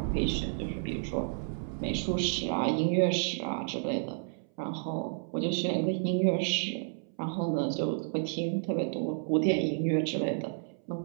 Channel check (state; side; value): silent; left; 57 dB below the other